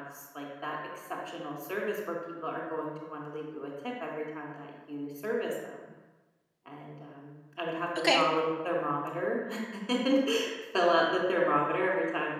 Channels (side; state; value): both; identical; correlation 1.00